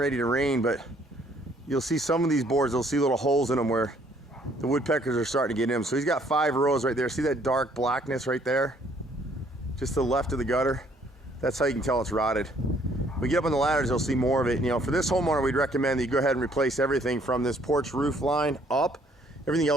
to rain, but you'll see some of these boards, they'll see little holes in them where the woodpeckers are starting to get in them. So he's got 5 rows right there. See that dark blackness right there? Just to the left of the gutter. That's how you can tell it's rotted. When we get up on the ladders, you'll see more of it. You know, for this homeowner, we'd recommend that you go ahead and replace everything from this porch roof line up. Everything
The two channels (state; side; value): normal; both; correlation 0.63